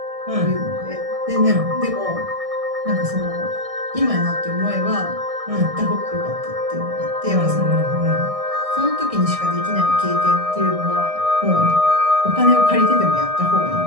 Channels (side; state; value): left; late; 1.6 ms